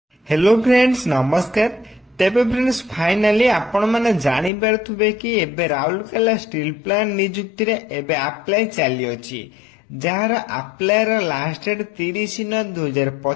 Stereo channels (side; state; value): right; drops out; at 4.5 s